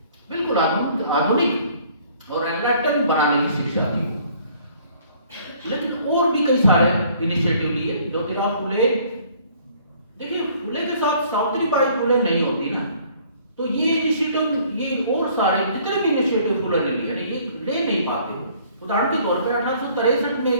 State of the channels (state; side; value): inverted; both; correlation -0.58